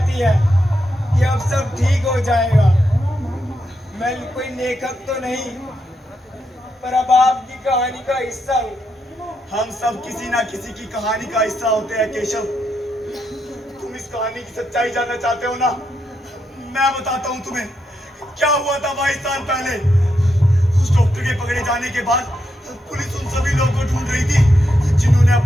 है कि अब सब ठीक हो जाएगा। मैं कोई लेखक तो नहीं, पर अब आपकी कहानी का हिस्सा हूँ। हम सब किसी ना किसी की कहानी का हिस्सा होते हैं केशव। तुम इस कहानी की सच्चाई जानना चाहते हो ना? मैं बताता हूँ तुम्हें क्या हुआ था 22 साल पहले। उस डॉक्टर के पकड़े जाने के बाद पुलिस उन सभी लोगों को ढूंढ रही थी जिन्होंने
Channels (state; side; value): normal; both; correlation 0.82